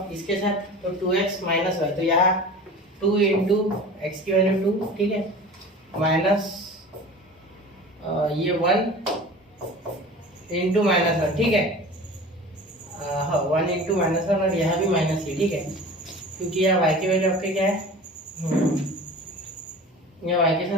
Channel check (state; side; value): normal; both; correlation 0.38